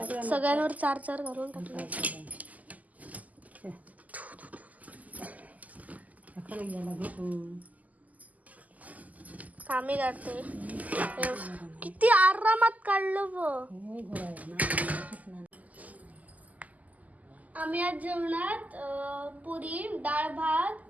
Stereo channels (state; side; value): late; left; 0.078 ms